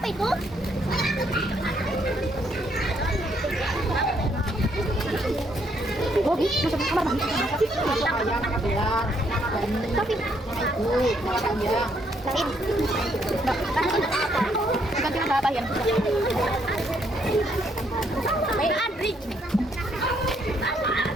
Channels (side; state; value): both; normal; correlation 0.71